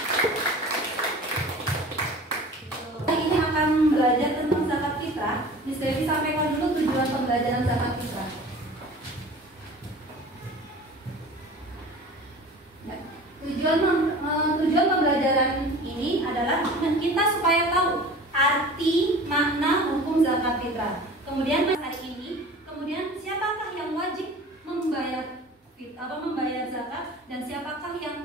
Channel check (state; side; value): normal; both; correlation 0.40